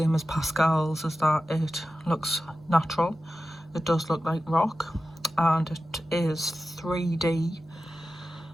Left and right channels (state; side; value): normal; both; correlation 0.93